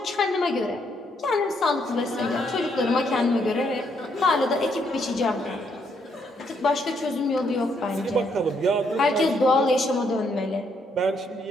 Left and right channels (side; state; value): both; normal; correlation 0.73